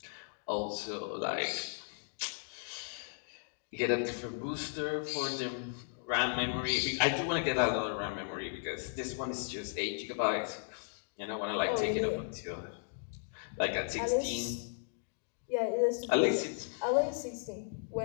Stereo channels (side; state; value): right; silent; digital silence